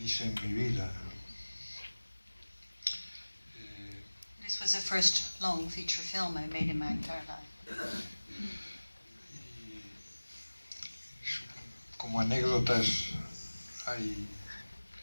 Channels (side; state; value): both; inverted; correlation -1.00